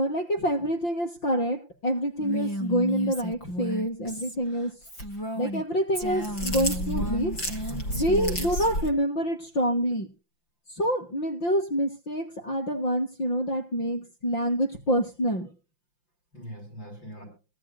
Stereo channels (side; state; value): right; late; 5.8 ms